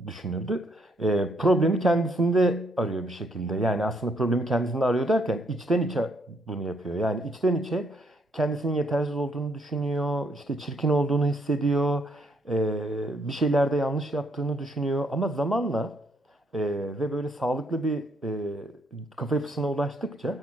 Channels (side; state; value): both; normal; correlation 0.71